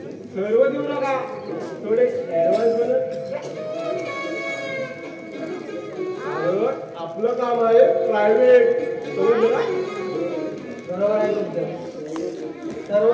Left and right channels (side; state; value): both; identical; correlation 1.00